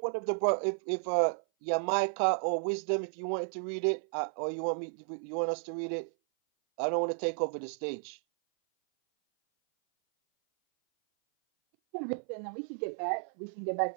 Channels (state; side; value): silent; left; 56 dB below the other